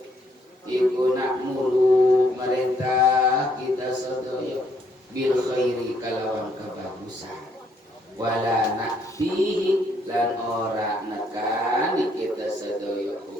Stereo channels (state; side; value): normal; both; correlation 0.70